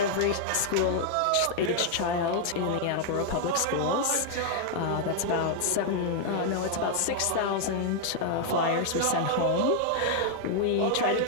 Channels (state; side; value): different; both; correlation 0.00